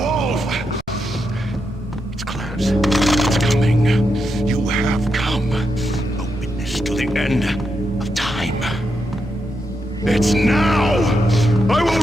wolf! It's close. It's coming. You have come. A witness to the end of time. It's now! I will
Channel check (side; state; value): both; normal; correlation 0.84